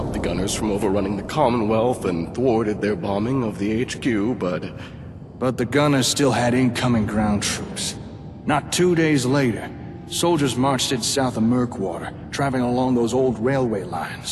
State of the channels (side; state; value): both; identical; correlation 1.00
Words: the gunners from overrunning the Commonwealth and thwarted their bombing of the HQ, but the gunners still had incoming ground troops. Not 2 days later, soldiers marched in south of Murkwater, traveling along those old railway